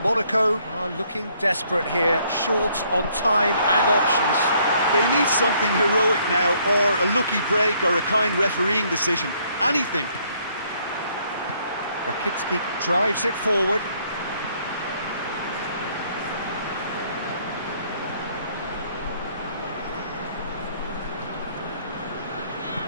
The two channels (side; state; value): both; inverted; correlation -0.66